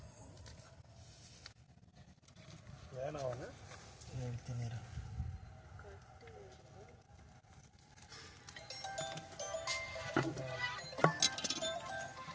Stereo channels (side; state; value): both; identical; correlation 1.00